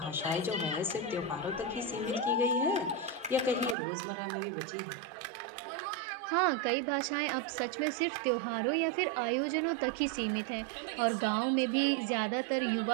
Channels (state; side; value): drops out; left; at 3.8 s